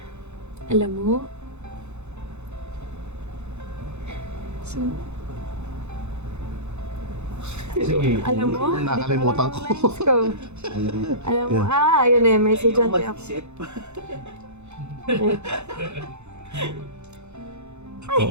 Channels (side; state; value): left; late; 0.82 ms